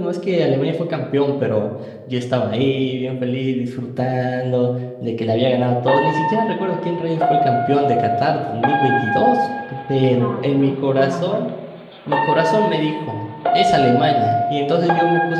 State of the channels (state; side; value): identical; both; correlation 1.00